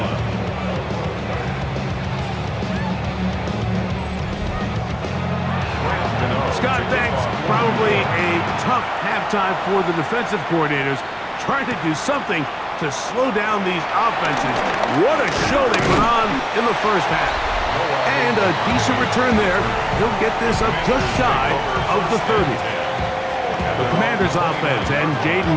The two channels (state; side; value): identical; both; correlation 1.00